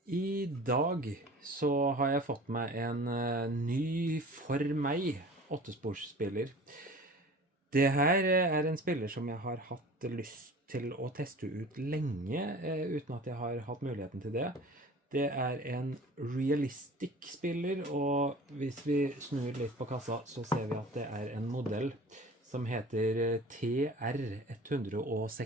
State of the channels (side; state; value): both; normal; correlation 0.42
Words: I dag så har jeg fått meg en ny for meg åttesporsspiller. Det her er en spiller som jeg har hatt lyst til å teste ut lenge, uten at jeg har hatt muligheten til det. Det er en realistic spiller, og hvis vi snur litt på kassa, så ser vi at det er en modell som heter